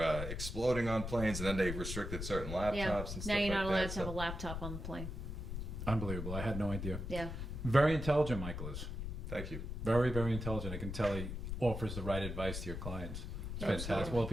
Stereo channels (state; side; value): noise; left; rumble, 5 dB below the sound